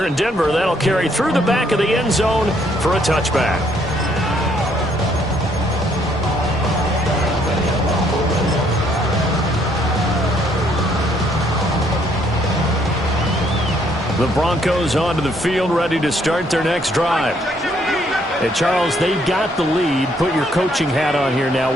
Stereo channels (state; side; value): normal; both; correlation 0.68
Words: in Denver, that'll carry through the back of the end zone for a touchback. The Broncos onto the field, ready to start their next drive. Hey, Charles, they got the lead. Put your coaching hat on here now.